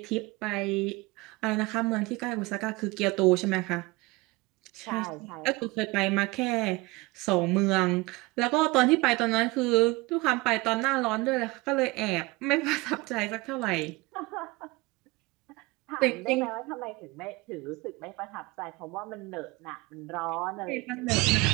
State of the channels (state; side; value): quieter; left; 23.3 dB